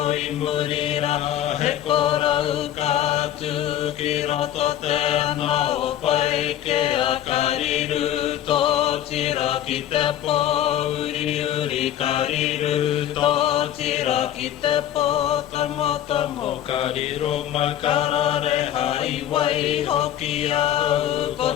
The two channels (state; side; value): quieter; right; 11.4 dB